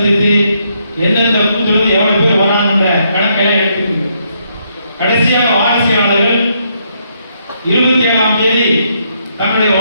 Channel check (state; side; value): inverted; both; correlation -0.75